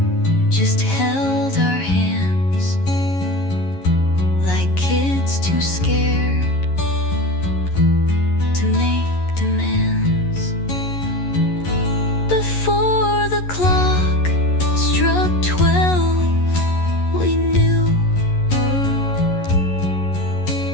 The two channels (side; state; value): right; late; 11 ms